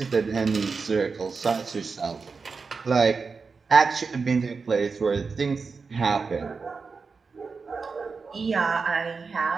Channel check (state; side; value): quieter; left; 4.8 dB